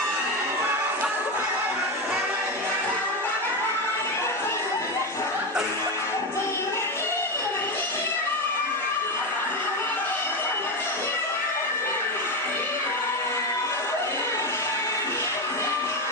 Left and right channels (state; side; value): normal; both; correlation 0.14